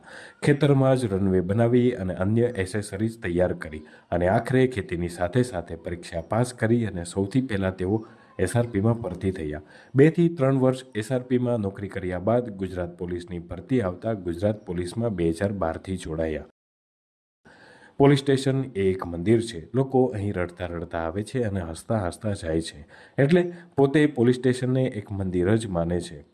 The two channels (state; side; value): identical; both; correlation 1.00